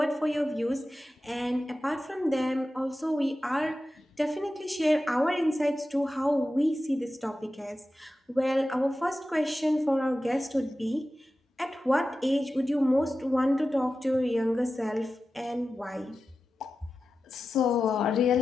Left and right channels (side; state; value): both; normal; correlation 0.93